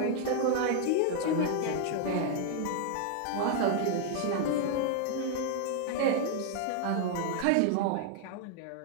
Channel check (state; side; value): different; both; correlation 0.00